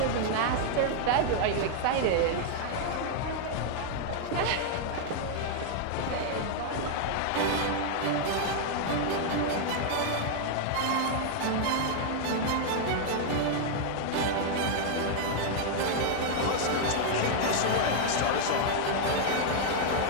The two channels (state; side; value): different; both; correlation 0.00